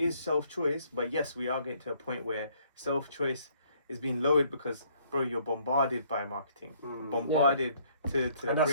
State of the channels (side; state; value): both; inverted; correlation -0.64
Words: self-choice, but yes, we are getting to a point where self-choice is being lowered because, bro, you're bombarded by marketing, bombarded to the and that's